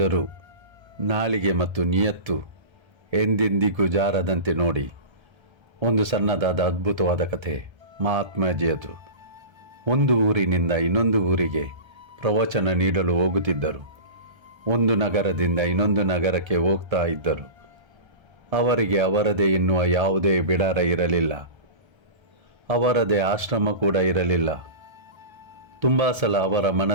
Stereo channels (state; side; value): late; left; 1.3 ms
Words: ನಾಲಿಗೆ ಮತ್ತು ನಿಯತ್ತು ಎಂದೆಂದಿಗೂ ಜಾರದಂತೆ ನೋಡಿ. ಒಂದು ಸಣ್ಣದಾದ ಅದ್ಭುತವಾದ ಕಥೆ ಮಹಾತ್ಮಾಜಿಯದು. ಒಂದು ಊರಿನಿಂದ ಇನ್ನೊಂದು ಊರಿಗೆ ಪ್ರವಚನ ನೀಡಲು ಹೋಗುತ್ತಿದ್ದರು. ಒಂದು ನಗರದಿಂದ ಇನ್ನೊಂದು ನಗರಕ್ಕೆ ಹೋಗ್ತಾ ಇದ್ದರು. ಅವರಿಗೆ ಅವರದೇ ಎನ್ನುವ ಯಾವುದೇ ಬಿಡಾರ ಇರಲಿಲ್ಲ. ಅವರದೇ ಆಶ್ರಮ ಕೂಡ ಇರಲಿಲ್ಲ. ತುಂಬ ಸಲ ಅವರ